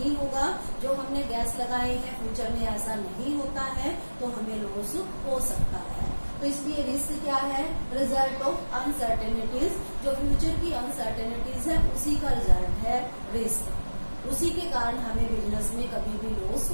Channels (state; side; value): inverted; both; correlation -1.00